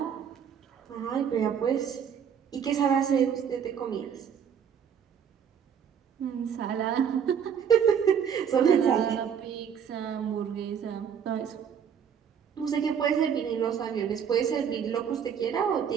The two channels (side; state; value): left; quieter; 7.8 dB